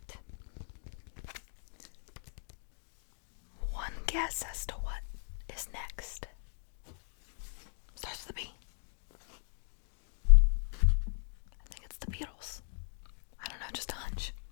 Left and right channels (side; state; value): right; silent; 53 dB below the other